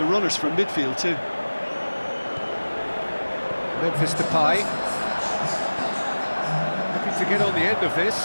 runners from midfield too. Memphis Depay. Looking to get on the end of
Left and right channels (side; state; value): both; inverted; correlation -1.00